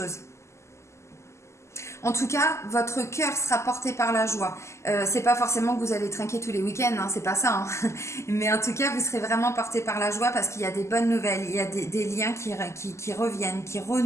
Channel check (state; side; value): late; right; 0.13 ms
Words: En tout cas, votre cœur sera porté par la joie. C'est pas forcément que vous allez trinquer tous les week-ends, hein, c'est pas ça. Hein. Mais en tout cas, vous serez vraiment porté par la joie parce qu'il y a des bonnes nouvelles, il y a des liens qui reviennent, qui